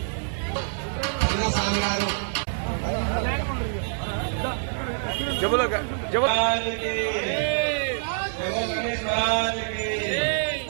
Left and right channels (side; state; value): left; silent; 61 dB below the other